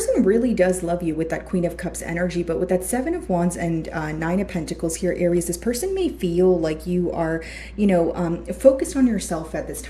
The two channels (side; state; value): both; identical; correlation 1.00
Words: really does love you with that Queen of Cups energy, but with that Seven of Wands and Nine of Pentacles here, Aries, this person may feel like you are, focused on yourself at this